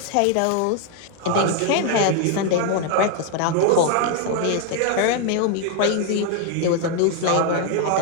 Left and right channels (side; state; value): both; different; correlation 0.01